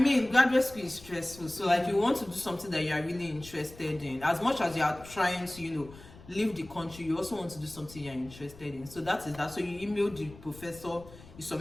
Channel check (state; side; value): noise; left; rumble, 19 dB below the sound